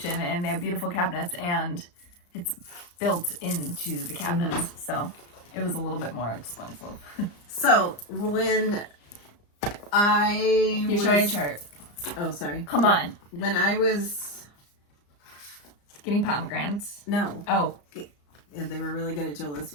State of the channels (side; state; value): right; late; 34 ms